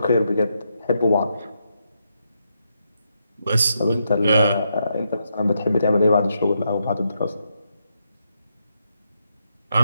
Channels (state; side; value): inverted; both; correlation -0.81